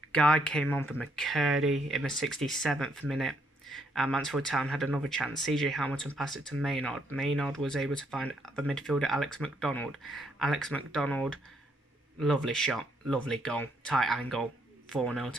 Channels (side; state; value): both; normal; correlation 0.72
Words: Guy came on for McCurdy in the 67th minute, and Mansfield Town had another chance. CJ Hamilton passed it to Maynard. Maynard was able to find the midfielder Alex McDonald. Alex McDonald, lovely shot, lovely goal, tight angle, 4-0